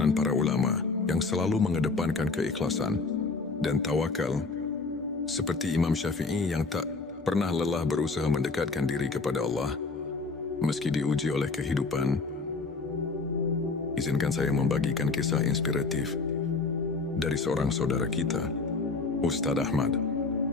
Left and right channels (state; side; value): quieter; right; 3.9 dB